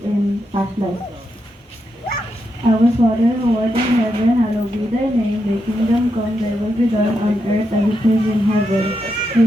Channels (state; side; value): normal; both; correlation 0.84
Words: in past life. Our Father who art in heaven, hallowed be thy name. Thy kingdom come, thy will be done on earth as it is in heaven.